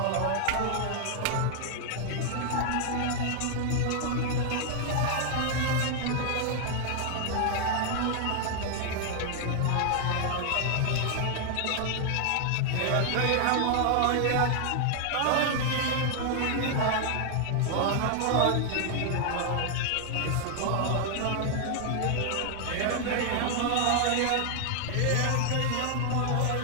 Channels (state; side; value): different; both; correlation 0.00